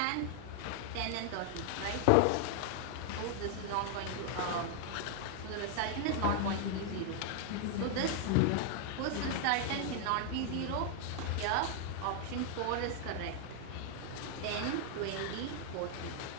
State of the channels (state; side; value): different; both; correlation 0.00